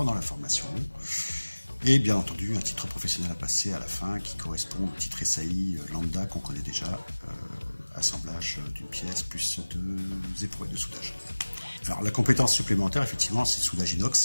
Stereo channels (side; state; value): both; inverted; correlation -1.00